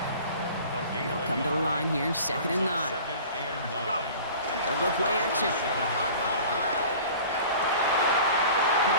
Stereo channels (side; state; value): both; inverted; correlation -0.43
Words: They'll come to the line here, 2nd and 9. They'll go play action.